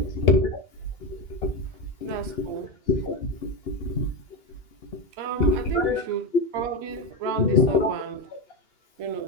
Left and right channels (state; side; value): late; right; 2.9 ms